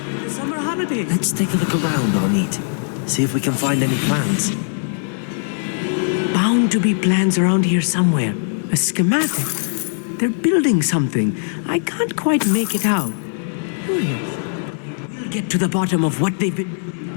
the summer holidays. Let's take a look around, Amit. See if we can find any plans. Bound to be plans around here somewhere. A schematic. They're building something. I can't quite make it out. Curious. I will get to the bottom of what they've been building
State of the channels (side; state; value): right; silent; digital silence